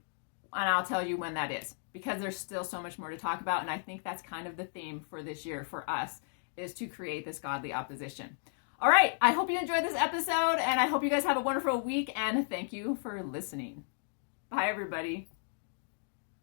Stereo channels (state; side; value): silent; right; digital silence